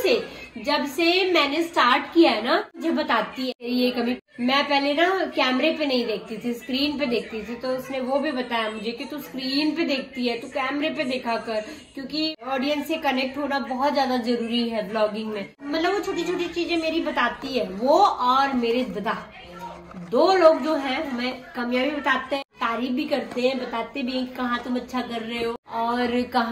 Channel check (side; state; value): both; identical; correlation 1.00